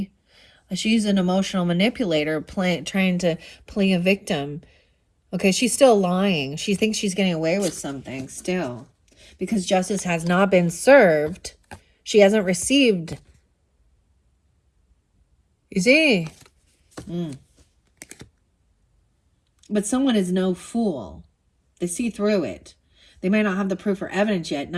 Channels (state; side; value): identical; both; correlation 1.00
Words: She's an emotional manipulator trying to play a victim. Okay, she's still lying. She thinks she's getting away with something still. Because justice has not been served. She hasn't received. You see? But someone is no fool. They see through it. They might not have the proof or evidence yet.